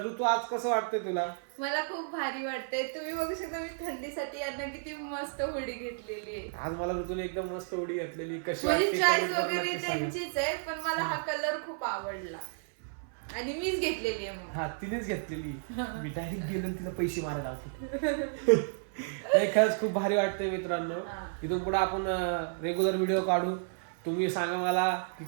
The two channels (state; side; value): silent; left; 56 dB below the other